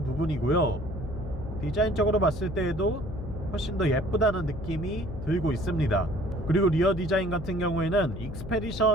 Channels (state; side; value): noise; left; hum, 9 dB below the sound